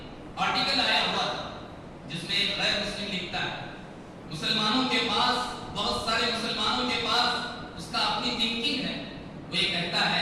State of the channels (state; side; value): identical; both; correlation 1.00